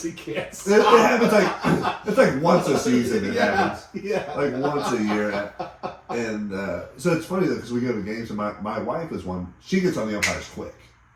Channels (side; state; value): both; identical; correlation 1.00